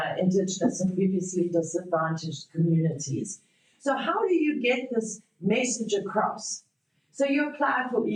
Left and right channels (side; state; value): both; identical; correlation 1.00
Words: Indigenous and previously disadvantaged communities. So how do you get this message across? So you apply for